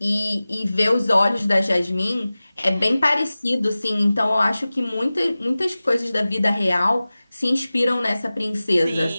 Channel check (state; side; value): inverted; both; correlation -0.97